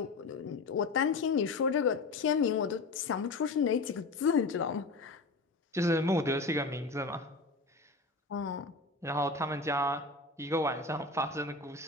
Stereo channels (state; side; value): quieter; right; 3.6 dB